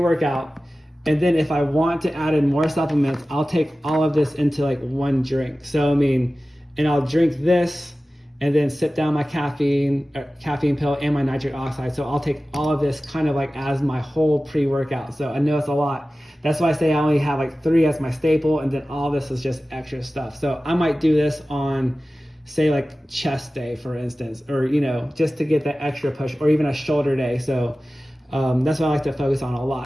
and then if I want to add in more supplements, I'll take all of this into like one drink. So, I mean, and I'll drink this and then sip down my caffeine pill and my nitric oxide. So I'll take all of this kind of like as my whole pre-workout. So I know it's a lot. That's why I say I only have like 3 as my staple, and then all this is just extra stuff. So I might do this on, say, like chest day, for instance, or, you know, just to get that extra push, or even a shoulder day. So that's what I like to focus on a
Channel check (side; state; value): both; normal; correlation 0.96